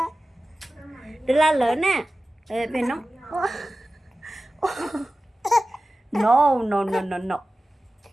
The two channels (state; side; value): normal; both; correlation 0.95